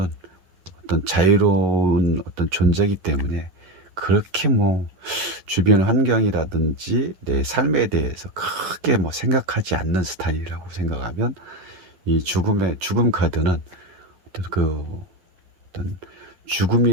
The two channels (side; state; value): left; late; 11 ms